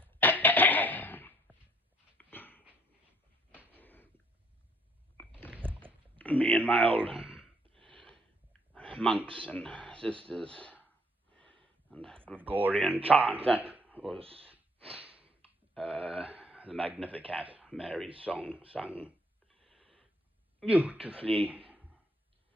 Me and my old monks and sisters and Gregorian chant, that was the Magnificat, Mary's song, sung beautifully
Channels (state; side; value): normal; both; correlation 0.64